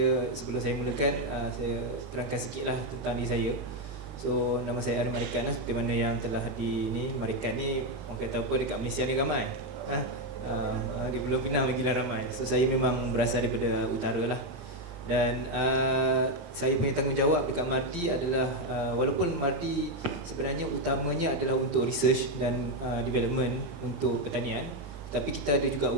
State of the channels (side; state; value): left; late; 40 ms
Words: sebelum saya mulakan, saya terangkan sedikitlah tentang diri saya. So nama saya Merican, seperti mana yang telah di Merican ni, orang kata apa dekat Malaysia ni ramai. Di Pulau Pinang lagi ramai. So saya memang berasal daripada utara lah. Dan saya punya tanggungjawab dekat MARDI adalah walaupun MARDI sebenarnya utamanya adalah untuk research dan development untuk pertanian, tapi kita ada juga